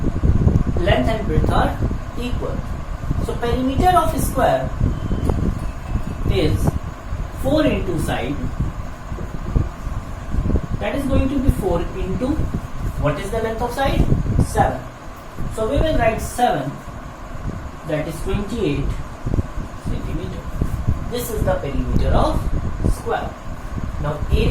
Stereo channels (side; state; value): both; identical; correlation 1.00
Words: and breadth are equal. So perimeter of a square is 4 into side. That is going to be 4 into, what is the length of side? 7. So we will write 7, that is 28 centimeter. This is the perimeter of square. Now